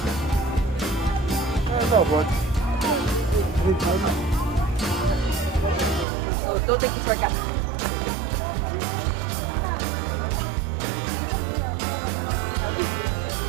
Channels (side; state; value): left; drops out; at 6.1 s